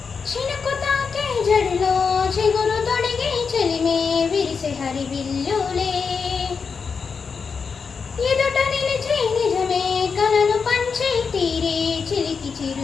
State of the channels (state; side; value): quieter; right; 5.5 dB